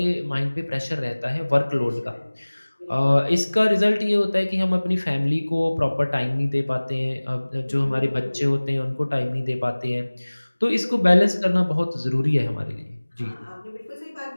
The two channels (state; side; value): inverted; both; correlation -1.00